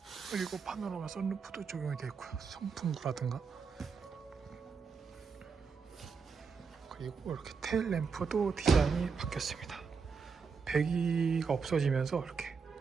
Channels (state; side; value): quieter; left; 5.4 dB